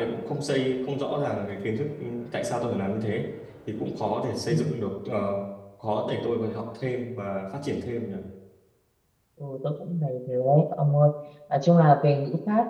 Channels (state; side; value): identical; both; correlation 1.00